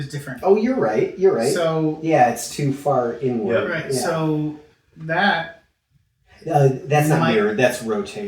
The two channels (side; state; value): both; identical; correlation 1.00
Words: different. Oh, you're right. You're right. So yeah, it's too far inward. right. Yeah. So that That's not Might- mirrored. That's